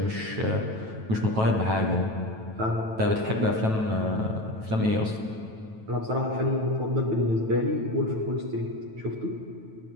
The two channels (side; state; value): left; late; 9.2 ms